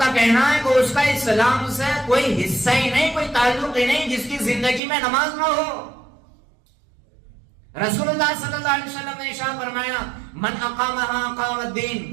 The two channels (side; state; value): left; drops out; at 4.8 s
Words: کہنا ہے کہ اس کا اسلام سے کوئی حصہ ہی نہیں، کوئی تعلق ہی نہیں جس کی زندگی میں نماز نہ ہو. رسول اللہ صلی اللہ علیہ وسلم نے ارشاد فرمایا من اقامها اقام الدین،